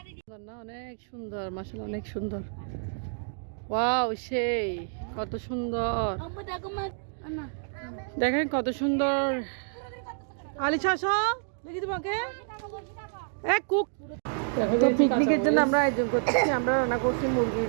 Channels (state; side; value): silent; left; digital silence